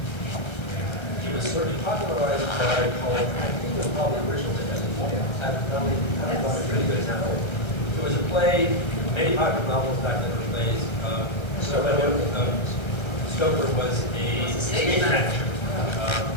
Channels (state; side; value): late; right; 1.3 ms